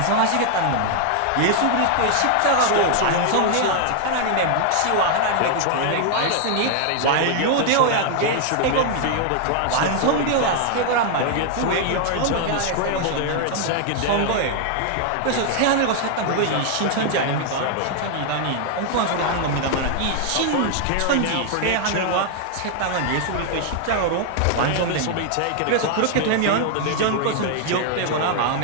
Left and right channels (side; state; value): both; different; correlation 0.00